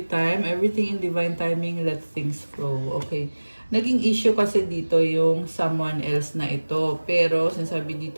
time. Everything in divine timing. Let things flow. Okay. Naging issue kasi dito yung someone else na ito. Pero, sinasabi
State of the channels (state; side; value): inverted; both; correlation -1.00